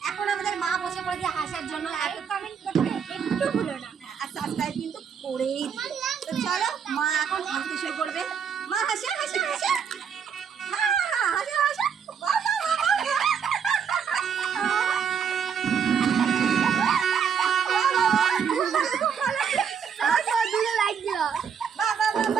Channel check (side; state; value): left; quieter; 7.1 dB